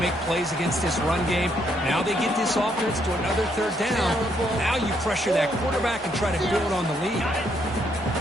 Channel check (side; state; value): both; normal; correlation 0.73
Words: plays against this run game. Now they get this offense to another 3rd down. Now you pressure that quarterback and try to build on the lead.